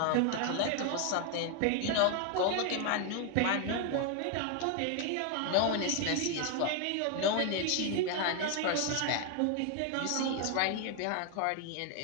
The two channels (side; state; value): both; different; correlation 0.01